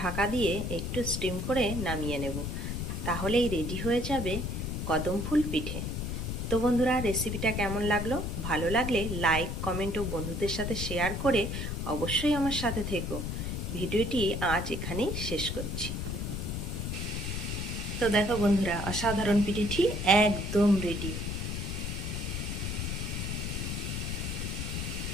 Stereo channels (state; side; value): noise; left; rumble, 3 dB below the sound